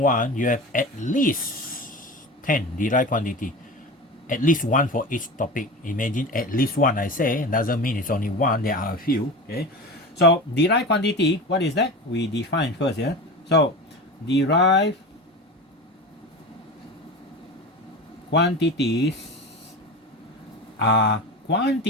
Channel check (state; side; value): normal; both; correlation 0.30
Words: you have at least 10 derived quantity. At least one for each topic. Imagine at least one, I say. Doesn't mean it's only one, there are a few. Okay. So derived quantity, what is that? We define first, yeah. So derived quantities are